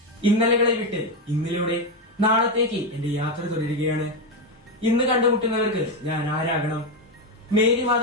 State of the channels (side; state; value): both; normal; correlation 0.09